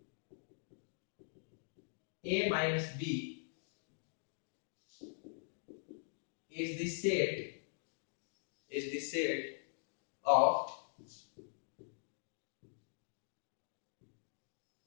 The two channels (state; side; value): silent; right; digital silence